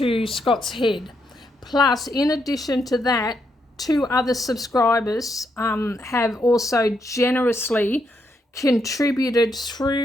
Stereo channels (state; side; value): normal; both; correlation 0.79